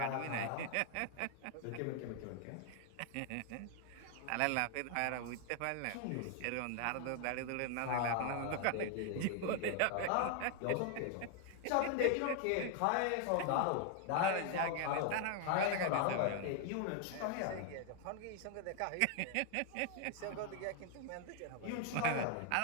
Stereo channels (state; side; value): different; both; correlation 0.00